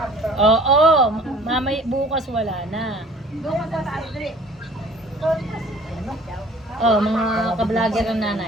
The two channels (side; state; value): both; normal; correlation 0.50